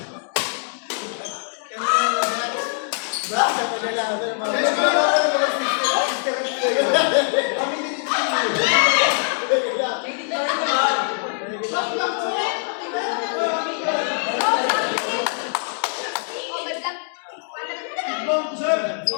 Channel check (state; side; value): silent; right; 64 dB below the other